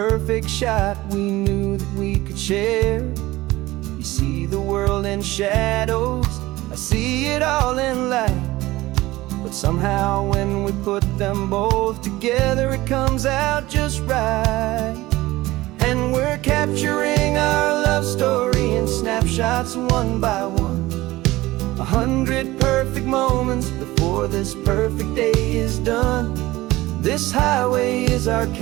shot we knew that we could share. You see the world in shadows, I see it all in light. But somehow when we put them both together, it comes out just right. And we're capturing our love story in snapshots one by one. 100 perfect moments before this perfect day is done. This highway is our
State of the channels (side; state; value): left; quieter; 18.3 dB